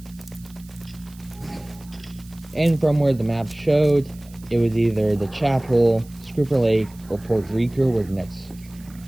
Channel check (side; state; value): right; noise; hiss, 25 dB below the sound